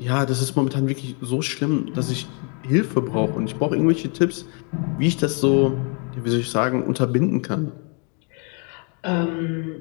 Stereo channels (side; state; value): right; quieter; 37.3 dB